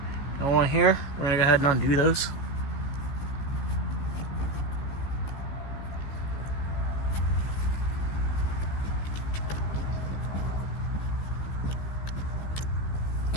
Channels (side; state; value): right; late; 15 ms